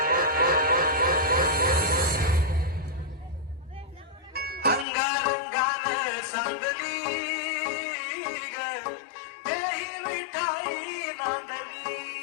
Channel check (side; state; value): right; drops out; at 4.9 s